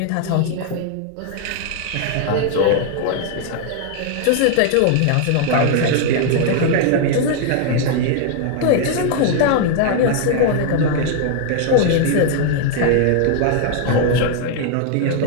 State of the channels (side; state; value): both; different; correlation 0.00